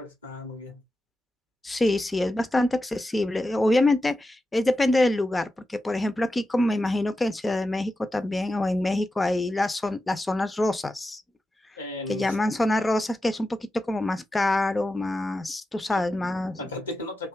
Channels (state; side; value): normal; both; correlation 0.91